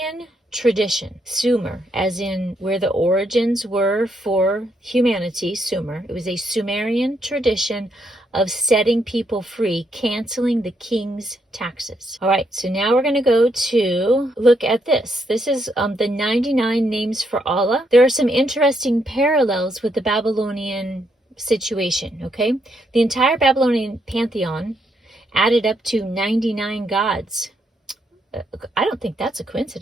tradition. Sumer, as in where the origins were for humanity, Sumer. It was a Sumerian tradition of setting people free, canceling the king's taxes. All right, so now we're going to go to look at this. This is the 99 names for Allah. There are some interesting parallels with the Babylonian situation, okay? The entire Babylonian pantheon added up to 99 gods. I don't think that's a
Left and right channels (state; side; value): normal; both; correlation 0.76